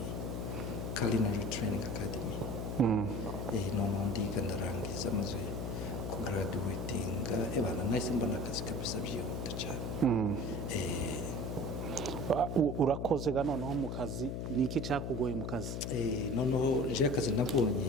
Culinary Training Academy noneho ndiga ndarangiza maze kugraduatinga ebana nahise mbona akazi kabisa byihuta cyane urakoze ga noneho mu kazi ni iki cyakugoye mu kazi noneho nje akazi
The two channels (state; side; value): noise; left; hum, 3 dB below the sound